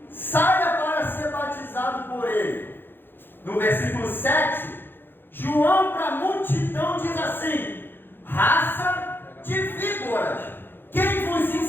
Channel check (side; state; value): right; late; 0.10 ms